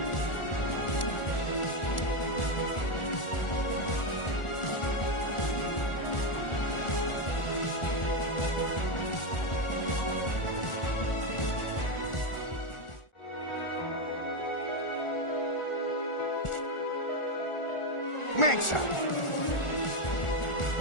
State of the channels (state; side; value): late; right; 1.4 ms